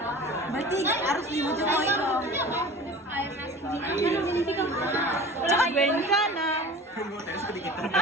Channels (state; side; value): normal; both; correlation 0.39